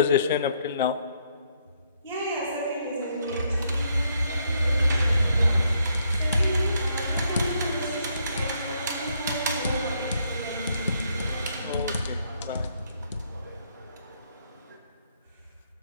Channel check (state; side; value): inverted; both; correlation -0.72